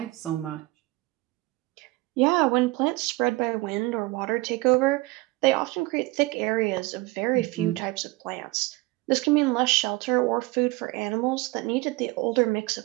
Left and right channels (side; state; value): left; quieter; 21.8 dB